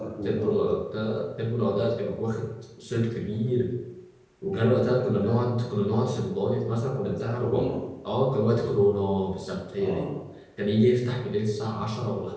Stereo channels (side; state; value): both; identical; correlation 1.00